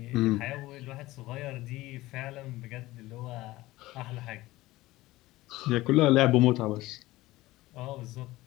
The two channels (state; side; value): quieter; right; 18.2 dB